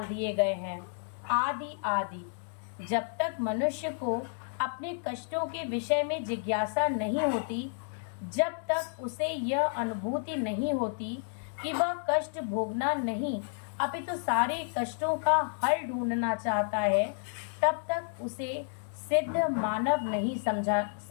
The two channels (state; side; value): silent; right; digital silence